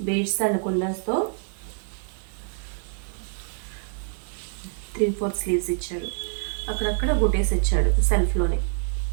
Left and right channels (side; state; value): left; silent; 61 dB below the other